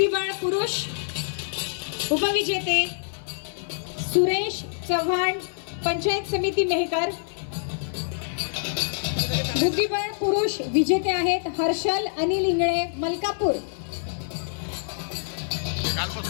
पुरुष उपविजेते सुरेश चव्हाण पंचायत समिती मेहकर. बुद्धिबळ पुरुष विजेते आहेत हर्षल अनिल इंगळे मलकापूर.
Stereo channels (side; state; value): right; silent; 61 dB below the other